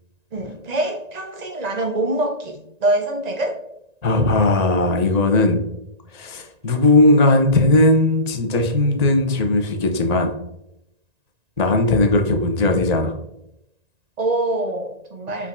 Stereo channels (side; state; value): left; late; 1.9 ms